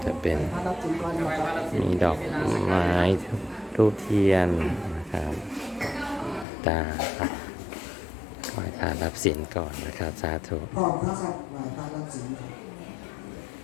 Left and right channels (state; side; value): drops out; right; at 6.5 s